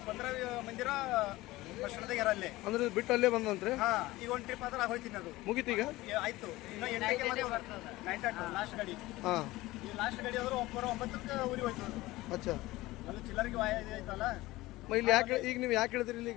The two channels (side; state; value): right; quieter; 18.7 dB